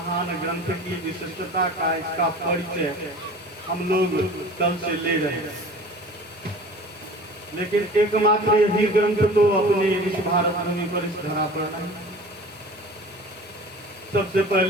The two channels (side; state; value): both; normal; correlation 0.42